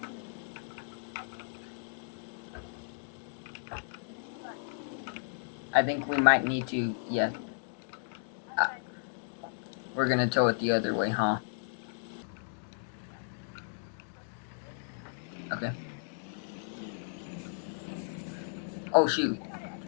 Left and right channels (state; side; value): silent; right; digital silence